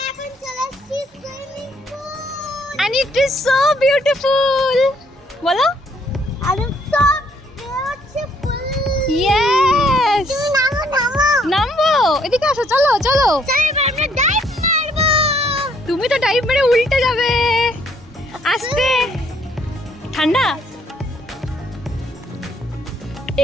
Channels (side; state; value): both; normal; correlation 0.66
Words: And it is so beautiful. বলো? Yes. নামবো, এদিকে আসো, চলো। তুমি তো ডাইভ মেরে উল্টে যাবে। আস্তে, ঠান্ডা,